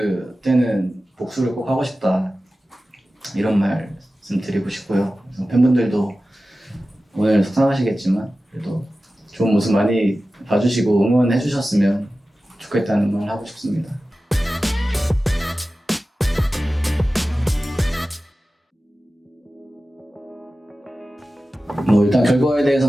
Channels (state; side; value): normal; both; correlation 0.95